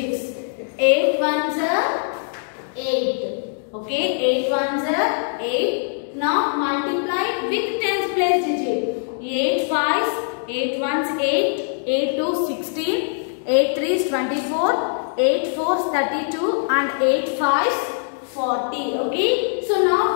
8 ones are 8. Okay, 8 ones are 8. Now multiply with tens place digit. 8 fives, 8 ones 8, 8 twos 16, 8 threes 24, 8 fours 32 and 8 fives 40. Okay, so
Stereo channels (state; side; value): silent; right; 64 dB below the other